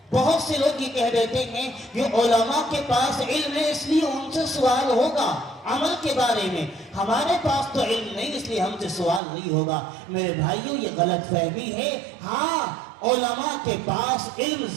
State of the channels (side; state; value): left; drops out; at 9.2 s